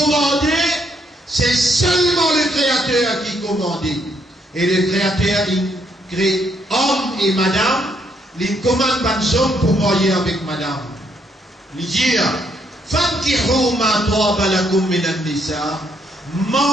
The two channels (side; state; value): both; normal; correlation 0.73